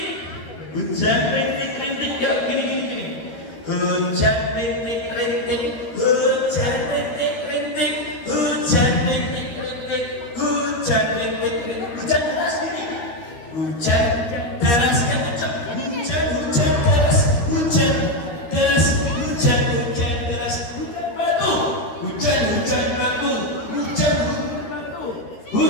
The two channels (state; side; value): late; right; 13 ms